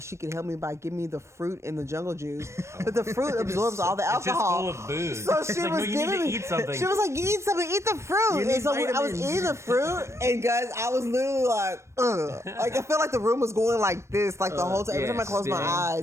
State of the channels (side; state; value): left; late; 0.13 ms